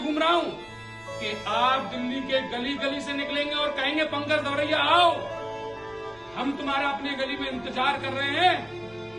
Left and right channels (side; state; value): right; noise; rumble, 27 dB below the sound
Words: रहा हूं कि आप दिल्ली के गली गली से निकलेंगे और कहेंगे पंकज दवरिया आओ, हम तुम्हारा अपने गली में इंतजार कर रहे हैं,